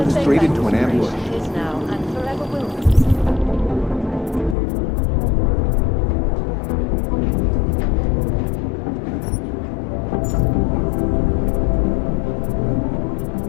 straight into an ambush. Is now and forever will be.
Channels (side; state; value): right; drops out; at 4.5 s